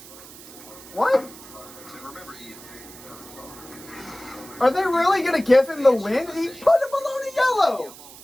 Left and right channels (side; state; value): right; noise; hiss, 18 dB below the sound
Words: What? And remember, Ian, Are they really going to give him the win? He put him below the yellow.